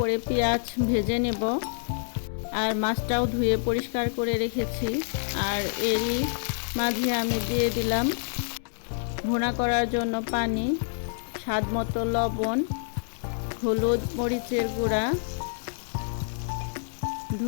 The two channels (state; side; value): silent; right; digital silence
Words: পেঁয়াজ ভেজে নেব, আর মাছটাও ধুয়ে পরিষ্কার করে রেখেছি। আর এরই মাঝে আমি দিয়ে দিলাম ভুনা করার জন্য পানি, স্বাদ মতো লবণ, হলুদ, মরিচের গুঁড়া,